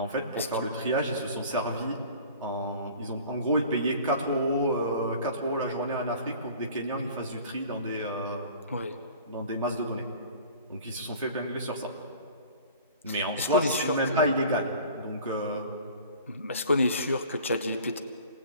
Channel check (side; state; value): both; inverted; correlation -0.45